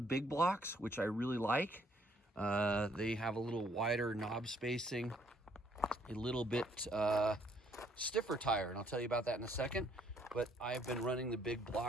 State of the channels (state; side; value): normal; both; correlation 0.66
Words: big blocks, which I really like. They have a little wider knob spacing, a little bit stiffer tire, and I'll tell you about that in a second. But I've been running the big